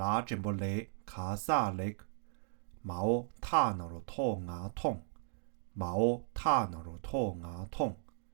这么雷卡萨雷，毛塔那罗托牙痛，毛塔那罗托牙痛，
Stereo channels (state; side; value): silent; left; digital silence